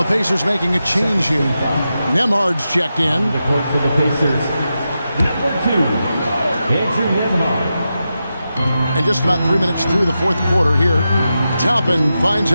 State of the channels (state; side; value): inverted; both; correlation -0.89